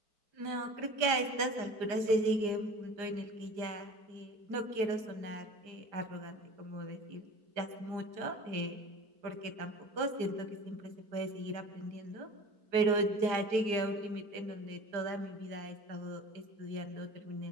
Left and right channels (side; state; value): left; late; 4.9 ms